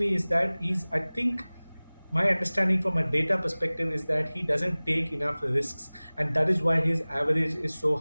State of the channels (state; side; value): inverted; both; correlation -1.00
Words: is that he's, I think, my understanding from a data perspective is that he doesn't take enough risks, and that is why his average is so